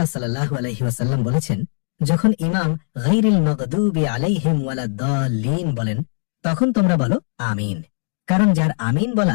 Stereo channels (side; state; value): right; silent; digital silence